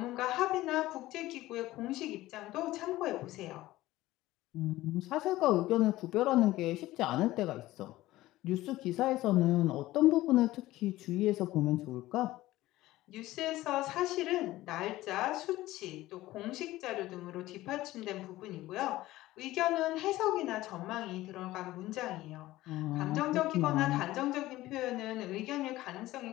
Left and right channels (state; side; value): quieter; right; 16.7 dB